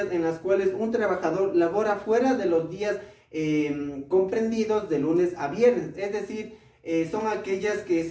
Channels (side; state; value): both; identical; correlation 1.00